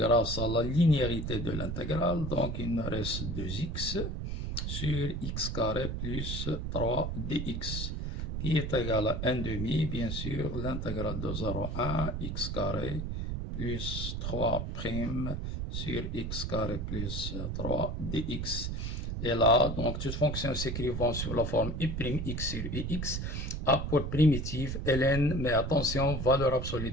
à la linéarité de l'intégrale. Donc, il nous reste 2x. Sur x carré plus 3 dx, qui est égal à 1/2, bien sûr, l'intégrale de 0,1 x carré plus 3 prime sur x carré plus 3 dx. Et là, donc, toute fonction s'écrivant sous la forme i'x sur ix a pour primitive ln, mais attention, valeur absolue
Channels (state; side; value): noise; right; rumble, 3 dB below the sound